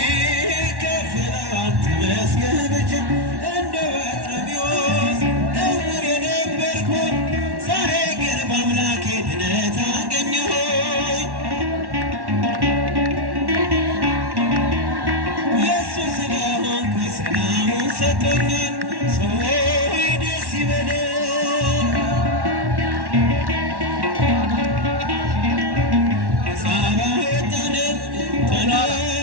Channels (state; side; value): late; left; 1.1 ms